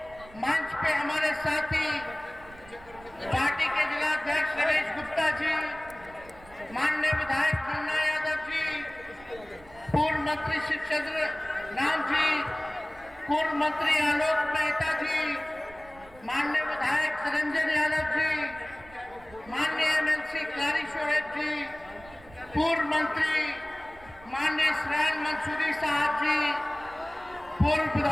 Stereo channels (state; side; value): noise; right; rumble, 22 dB below the sound